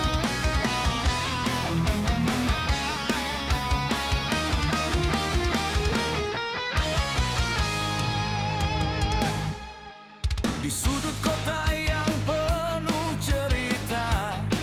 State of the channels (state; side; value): identical; both; correlation 1.00